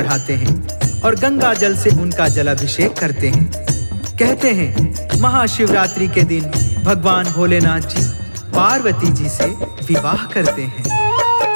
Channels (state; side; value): inverted; both; correlation -1.00